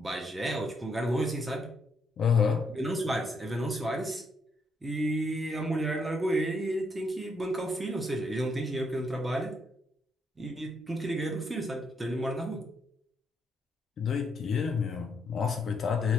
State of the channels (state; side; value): normal; both; correlation 0.75